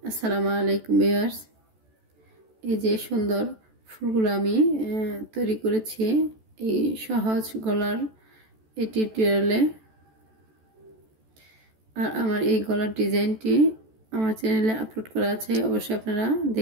আসসালামু আলাইকুম ভিউয়ার্স। এই যে সুন্দর ফুলগুলো আমি তৈরি করেছি এই সহজ গলার এই টিউটোরিয়ালে। আর আমার এই গলার ডিজাইনটি আমার চ্যানেলে আপলোড করা আছে, অবশ্যই আপনারা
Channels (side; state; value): left; late; 14 ms